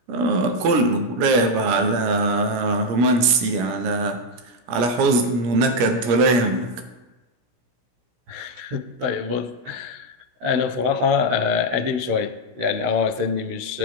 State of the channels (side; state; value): left; late; 17 ms